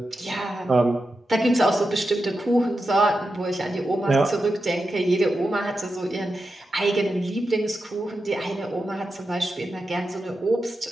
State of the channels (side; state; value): both; normal; correlation 0.89